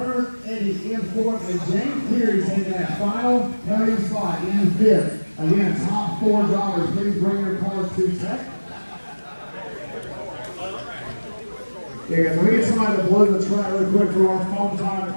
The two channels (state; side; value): inverted; both; correlation -1.00